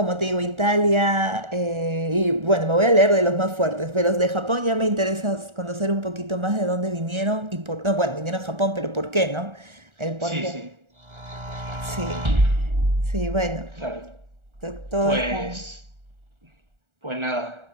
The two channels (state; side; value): late; left; 1.4 ms